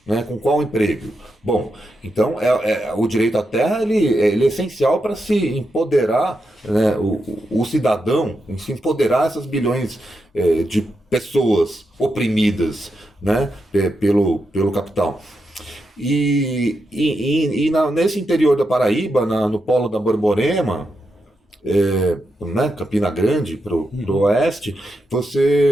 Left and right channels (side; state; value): both; normal; correlation 0.85